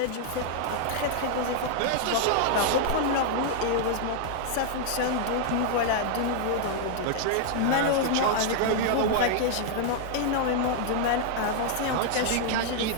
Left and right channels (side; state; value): both; different; correlation 0.00